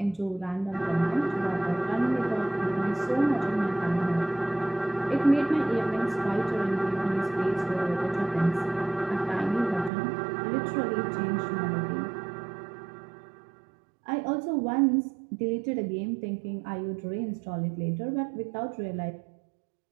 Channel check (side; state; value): left; drops out; at 9.9 s